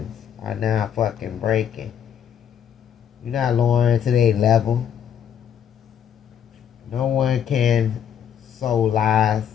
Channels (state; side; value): quieter; right; 8.8 dB